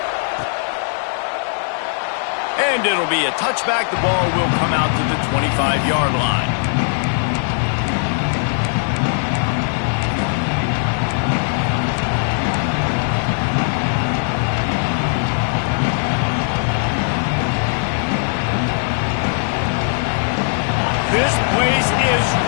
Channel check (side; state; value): right; silent; digital silence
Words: And it'll be a touchback. The ball will come out to the 25-yard line. This place is